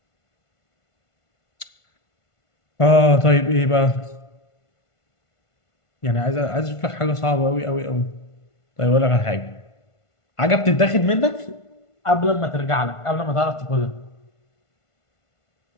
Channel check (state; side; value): late; right; 1.5 ms